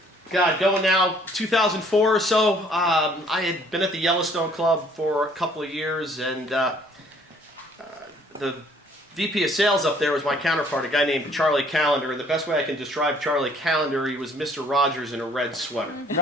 Going now 2004 or so, I had been at the Yellowstone Club for a couple of years, and the VP of sales up there was my counterpart, a guy named Charlie Callender. And the best way I can describe Charlie Callender, he was Mr. Rogers in a red sweater.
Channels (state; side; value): normal; both; correlation 0.60